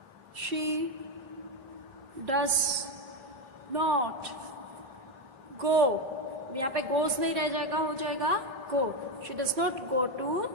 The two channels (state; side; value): late; left; 3.4 ms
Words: शी डज नॉट गो. यहाँ पे गोज नहीं रह जाएगा, हो जाएगा go. She does not go to